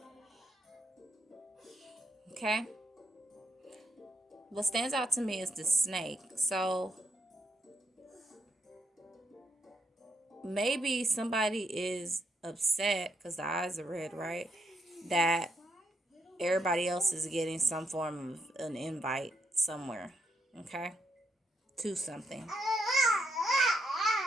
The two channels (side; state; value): both; normal; correlation 0.77